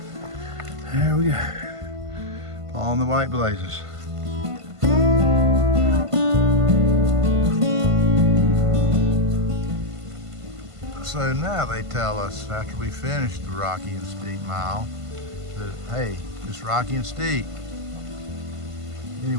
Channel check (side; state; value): left; late; 1.5 ms